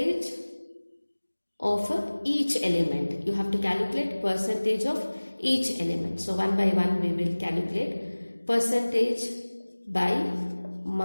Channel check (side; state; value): both; inverted; correlation -1.00